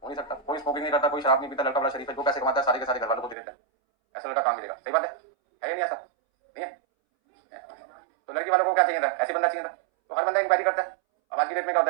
नहीं सकता। कोई स्मोकिंग नहीं करता, कोई शराब नहीं पीता, लड़का बड़ा शरीफ है, जो पैसे कमाता है सारे के सारे घर वालों को दे देता है। ऐसा लड़का काम मिलेगा, सही बात है या नहीं? ऐसा नहीं है? तो लड़की वालों को क्या चाहिए था, ऐसे बंदा चाहिए था। तो हर बंदा इंक्वायरी करता है। अब आज की डेट में क्या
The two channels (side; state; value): left; drops out; at 3.4 s